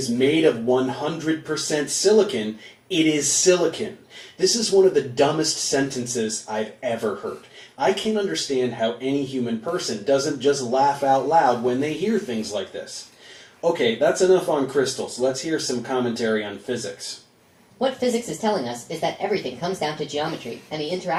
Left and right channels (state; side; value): identical; both; correlation 1.00